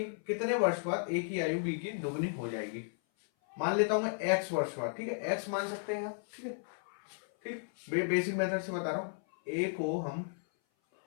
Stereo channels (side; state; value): right; silent; 55 dB below the other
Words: कितने वर्ष बाद ए की आयु बी की दोगुनी हो जाएगी। मान लेता हूं मैं एक्स वर्ष बाद। ठीक है, एक्स मान सकते हैं आप। ठीक है, ठीक, बेसिक मेथड से बता रहा हूं। ए को हम